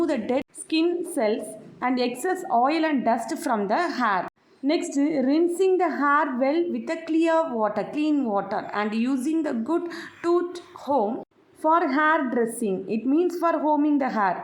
the dead skin cells and excess oil and dust from the hair. Next, rinsing the hair well with a clean water and using the good tooth comb for hair dressing, it means for combing the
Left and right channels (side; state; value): both; identical; correlation 1.00